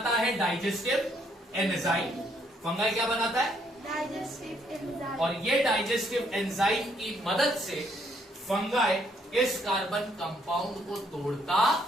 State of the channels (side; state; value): both; normal; correlation 0.70